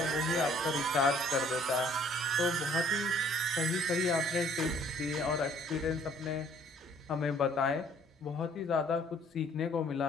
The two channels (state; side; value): normal; both; correlation 0.59